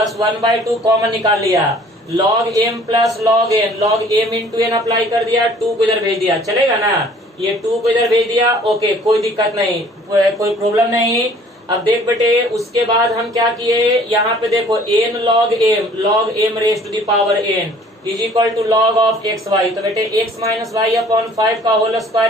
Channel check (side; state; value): both; normal; correlation 0.54